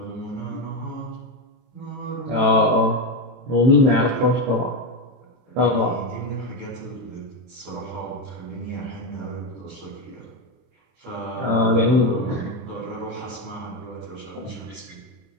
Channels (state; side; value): late; left; 23 ms